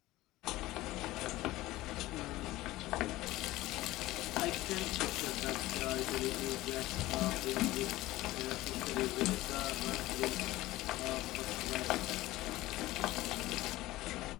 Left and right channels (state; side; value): quieter; right; 17.6 dB